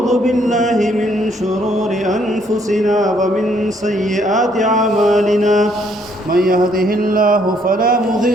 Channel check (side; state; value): both; normal; correlation 0.68